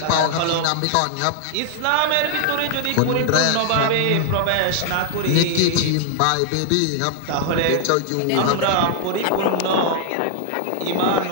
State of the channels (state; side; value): different; both; correlation 0.00